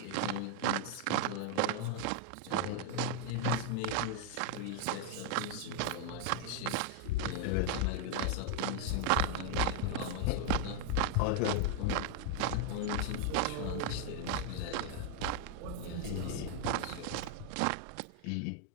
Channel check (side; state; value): both; different; correlation 0.00